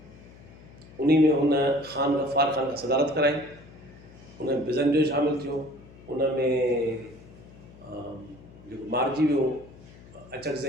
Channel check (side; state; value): left; noise; hum, 21 dB below the sound